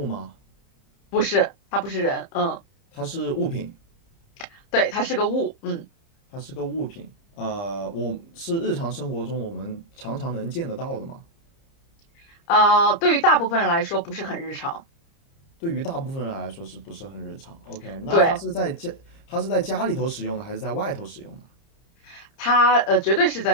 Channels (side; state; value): right; late; 30 ms